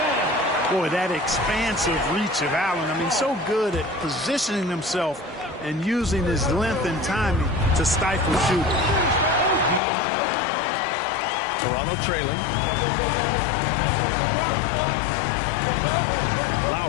Boy, that expansive reach of Allen. I mean, so good at positioning himself and using his length and timing to stifle shooting. Toronto trailing.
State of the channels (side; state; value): right; drops out; at 9.8 s